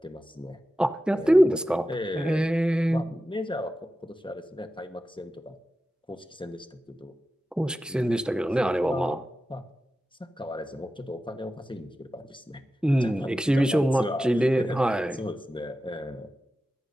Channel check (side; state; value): both; normal; correlation 0.93